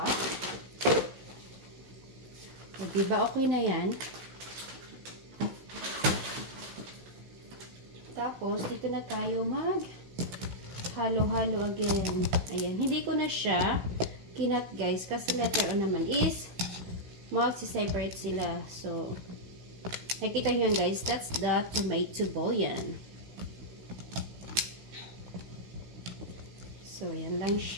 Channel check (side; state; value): left; late; 16 ms